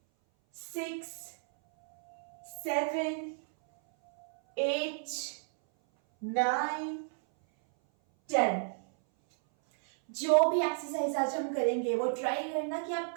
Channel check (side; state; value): left; silent; 56 dB below the other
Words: 6 7 8 9 10। जो भी एक्सरसाइज आज हम करेंगे वो ट्राई करना कि आप